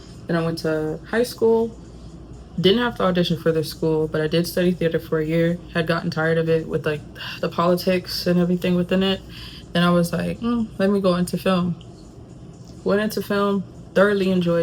Then I went to high school, didn't have to audition for this school, but I did study theater for a year, had gotten tired of it with like the politics and everything within it. And I was like, let me go into film. Went into film, thoroughly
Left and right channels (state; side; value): identical; both; correlation 1.00